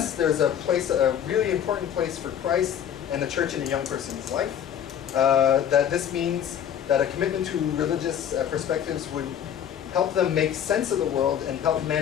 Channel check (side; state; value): right; quieter; 9.2 dB